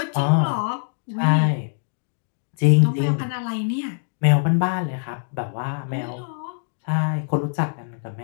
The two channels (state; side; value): silent; right; digital silence